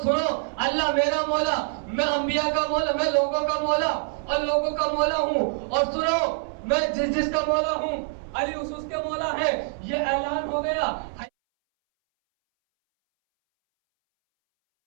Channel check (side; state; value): left; silent; 62 dB below the other